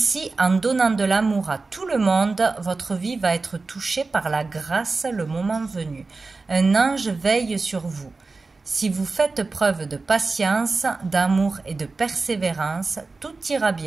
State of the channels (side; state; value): left; quieter; 3.8 dB